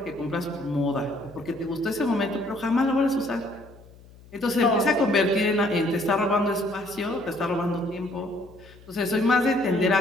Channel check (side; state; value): left; noise; hum, 23 dB below the sound